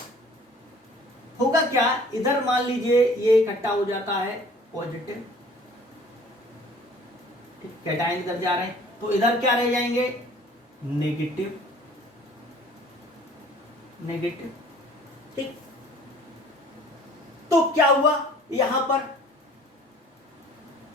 होगा क्या, इधर मान लीजिए ये इकट्ठा हो जाता है पॉजिटिव, कैटायन इधर जा रहे हैं, तो इधर क्या रह जाएंगे, नेगेटिव नेगेटिव। ठीक, तो क्या हुआ, यहां पर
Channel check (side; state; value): both; normal; correlation 0.51